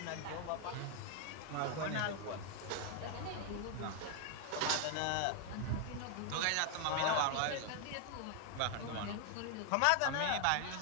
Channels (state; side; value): different; both; correlation 0.00